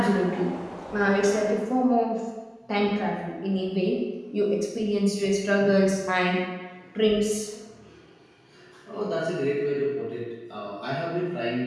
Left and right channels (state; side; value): identical; both; correlation 1.00